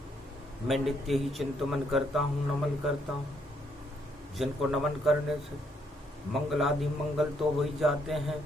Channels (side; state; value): both; normal; correlation 0.72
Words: मैं नित्य ही चिंतन करता हूँ, नमन करता हूँ। जिनको नमन करने से मंगल आदि मंगल तो हो ही जाते हैं,